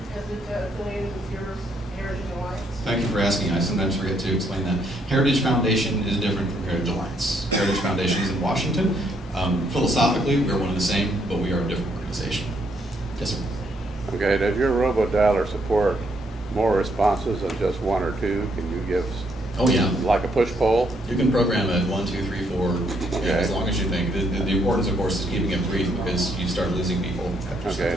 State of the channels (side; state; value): both; normal; correlation 0.72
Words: affiliated with your Heritage Alliance? Thank you for asking. I sometimes forget to explain that. Heritage Foundation is different from Heritage Alliance. Heritage Foundation is in Washington. Philosophically, we're one and the same, but we are a different organization. Yes, sir. Okay, does your robodialer support more responses than just 1 or 2? Can you give, oh yeah, like a push poll? You can program it 1, 2, 3, 4, okay. Yeah, as long as you think. The importance, of course, is keeping it brief because you start losing people. Okay,